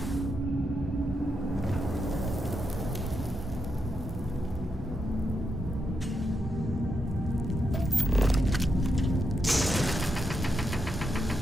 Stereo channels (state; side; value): normal; both; correlation 0.84